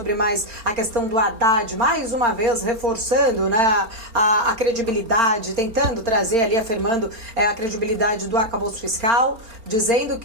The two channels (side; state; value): left; late; 4.4 ms